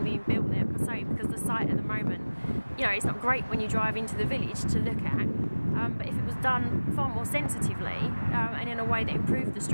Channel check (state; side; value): inverted; both; correlation -1.00